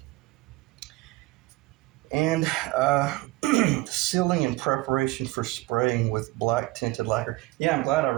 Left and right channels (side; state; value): left; quieter; 19.8 dB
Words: And sealing in preparation for spraying with black tinted lacquer. Yeah, I'm glad I